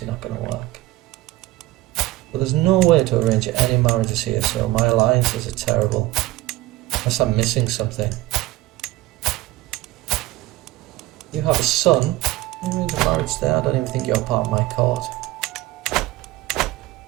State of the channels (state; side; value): quieter; left; 17.6 dB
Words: not going to work. But there's no way to arrange any marriages here, so my alliances are terrible. Unless I'm missing something. You have a son. Arrange a marriage there. I don't even think you're part of my court.